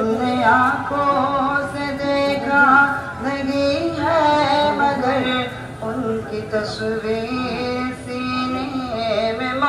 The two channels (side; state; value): both; identical; correlation 1.00